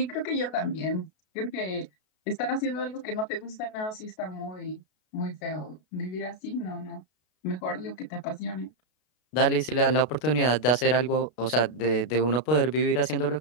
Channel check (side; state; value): right; late; 32 ms